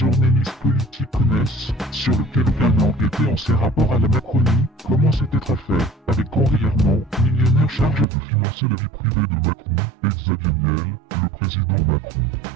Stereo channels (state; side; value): drops out; left; at 8.1 s